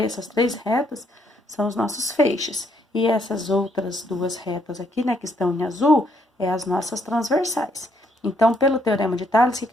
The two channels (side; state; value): both; normal; correlation 0.71